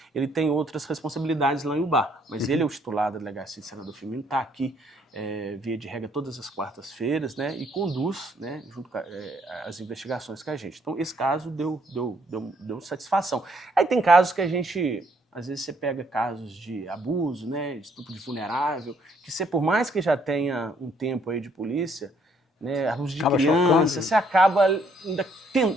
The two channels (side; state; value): both; normal; correlation 0.68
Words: Ele tem outras responsabilidades lá em Ubá, mas ele é o titular da delegacia de Senador Firmino, está aqui via de regra todas as quartas-feiras, né, e conduz, né, junto com as investigações com a gente. Então, esse caso deu satisfação. Aí tem casos que a gente, às vezes você pega casos de abuso, né, de estupro de vulnerável, que você, por mais que já tenha um tempo aí de polícia, né, abuso de criança, você acaba ainda